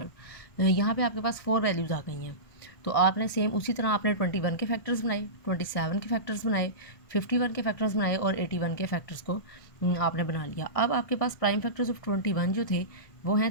यहाँ पे आपके पास 4 वैल्यूज़ आ गई हैं, तो आपने सेम उसी तरह आपने 21 के फैक्टर्स बनाए, 27 के फैक्टर्स बनाए, 51 के फैक्टर्स बनाए और 81 के फैक्टर्स को आपने बना लिया। अब आपके पास प्राइम फैक्टर्स ऑफ 21 जो थे वो हैं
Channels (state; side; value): late; right; 1.6 ms